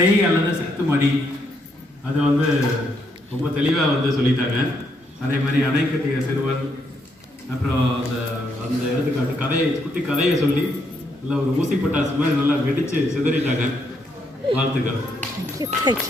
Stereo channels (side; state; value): both; normal; correlation 0.75